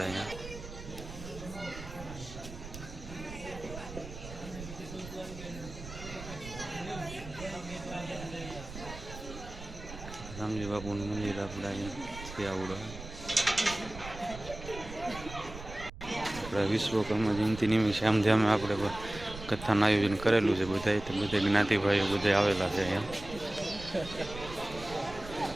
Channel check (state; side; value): noise; right; rumble, 12 dB below the sound